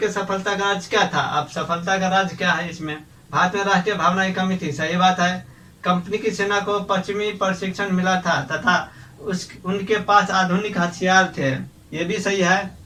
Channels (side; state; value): both; identical; correlation 1.00